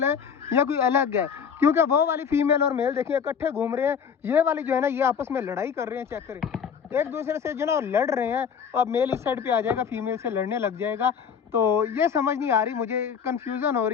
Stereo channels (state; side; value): quieter; right; 7.1 dB